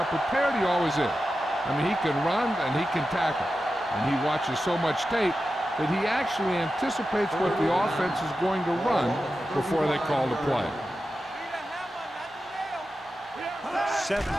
prepared he always is. I mean, he can run and he can tackle, and he watches so much tape that he actually anticipates what the offense is going to run before they call the play. 7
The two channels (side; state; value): both; normal; correlation 0.92